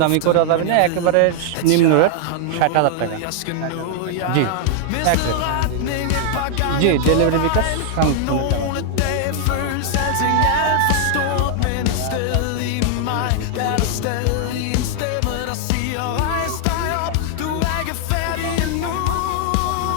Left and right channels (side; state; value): both; different; correlation 0.00